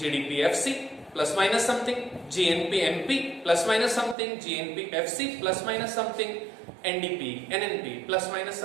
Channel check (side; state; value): left; drops out; at 4.2 s